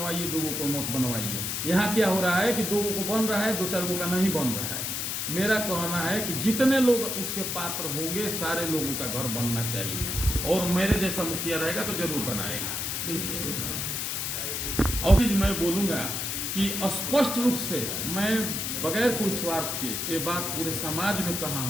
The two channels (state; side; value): noise; left; hiss, 2 dB below the sound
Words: 2 गो को मत बनवाइए। यहाँ क्या हो रहा है कि 2 गो को बन रहा है, 2-4 गो का नहीं बन रहा है। मेरा कहना है कि जितने लोग उसके पात्र होंगे सारे लोगों का घर बनना चाहिए, और मेरे जैसा मुखिया रहेगा तो जरूर बनाएगा। और मैं बोलूँगा कि स्पष्ट रूप से मैं बगैर कोई स्वार्थ के, ये बात पूरे समाज में कहा